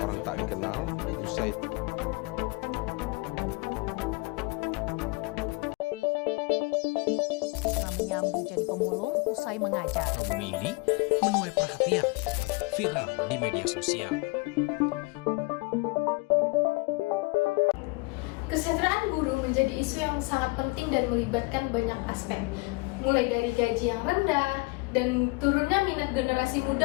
tak dikenal usai menyambi jadi pemulung usai mengajar. Album ini menuai perhatian, viral di media sosial. Kesejahteraan guru menjadi isu yang sangat penting dan melibatkan banyak aspek, mulai dari gaji yang rendah dan turunnya minat generasi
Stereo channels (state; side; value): quieter; right; 27.1 dB